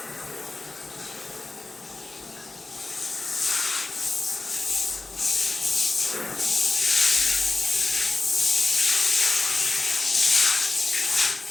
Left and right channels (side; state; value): right; quieter; 3.5 dB